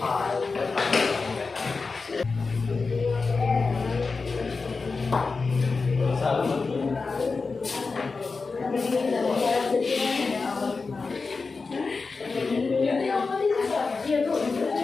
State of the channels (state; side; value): quieter; right; 4.3 dB